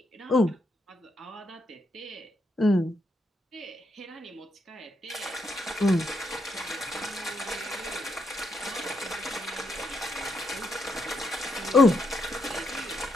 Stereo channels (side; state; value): both; normal; correlation 0.79